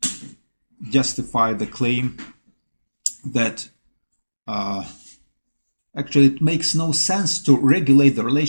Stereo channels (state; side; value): inverted; both; correlation -1.00